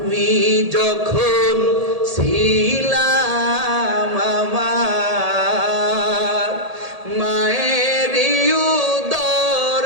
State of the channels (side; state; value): left; late; 1.7 ms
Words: যখন ছিলাম আমার মায়ের